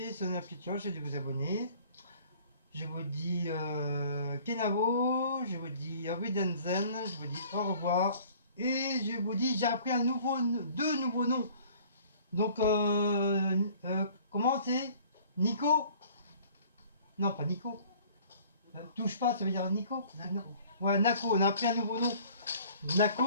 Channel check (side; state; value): both; inverted; correlation -0.52